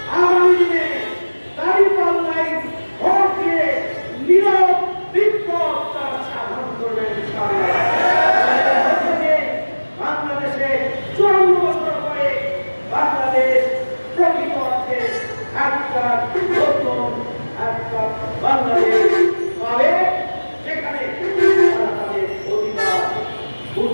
আগামী দিনে দাঁড়িপাল্লায় ভোট দিয়ে নীরব বিপ্লব তারা সাধন করবেন। বাংলাদেশে 54 বছর পরে বাংলাদেশ প্রকৃত অর্থে একটা নতুন একটা বাংলাদেশ পাবে, যেখানে তারা তাদের অধিকার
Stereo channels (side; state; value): both; inverted; correlation -1.00